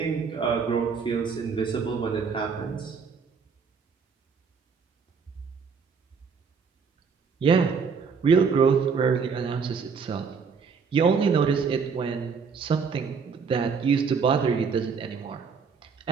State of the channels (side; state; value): left; quieter; 5.7 dB